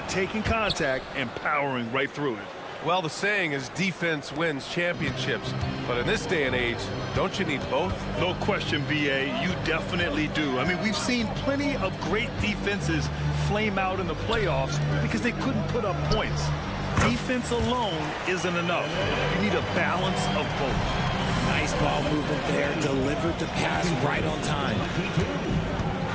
taking contact and powering right through it. Well, the saying is defense wins championships, but in this day and age, don't you need both? No question, BA, you definitely do. I mean, we've seen plenty of great defenses flame out in the playoffs because they couldn't put up points. Defense alone isn't enough. You need a balance of both. Nice ball movement there. Delivered the pass right on time.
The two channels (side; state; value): both; identical; correlation 1.00